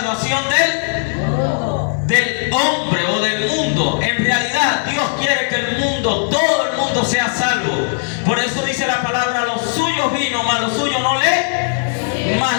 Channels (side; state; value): right; silent; digital silence